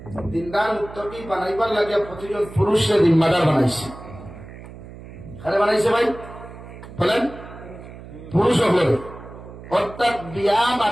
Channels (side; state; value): right; noise; hum, 15 dB below the sound